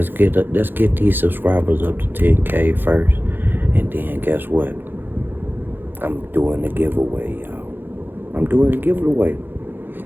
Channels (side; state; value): left; late; 0.097 ms